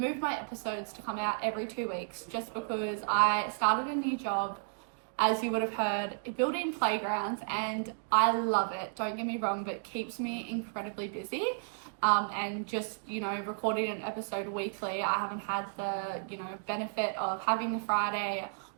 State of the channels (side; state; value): left; silent; digital silence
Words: my episodes to come out every 2 weeks just because I started a new job, as you would have heard, building playgrounds, and I love it, don't get me wrong, but it keeps me incredibly busy. And just, recording an episode weekly, I haven't had the, benefit of having the Friday